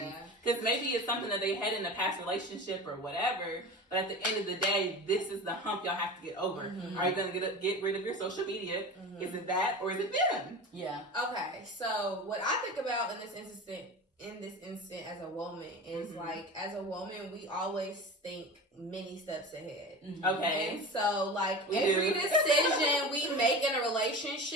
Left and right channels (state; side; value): normal; both; correlation 0.31